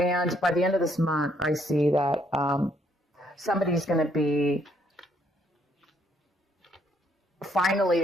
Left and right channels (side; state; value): both; normal; correlation 0.69